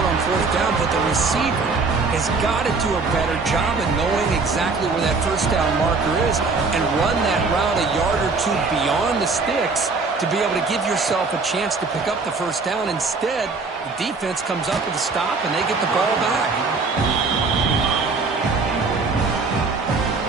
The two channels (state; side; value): quieter; left; 4.2 dB